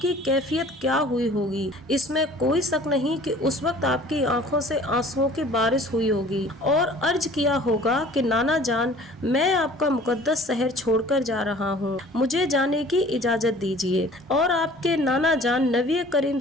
کی کیفیت کیا ہوئی ہوگی؟ اس میں کوئی شک نہیں کہ اس وقت آپ کی آنکھوں سے آنسوؤں کی بارش ہوئی ہوگی اور عرض کیا ہوگا کہ نانا جان، میں آپ کا مقدس شہر چھوڑ کر جا رہا ہوں، مجھے جانے کی اجازت دیجیے۔ اور آپ کے نانا جان نبی کریم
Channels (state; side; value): normal; both; correlation 0.49